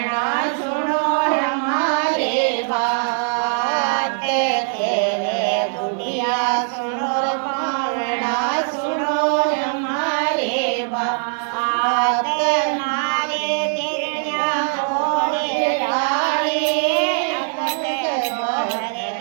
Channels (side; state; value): left; silent; 55 dB below the other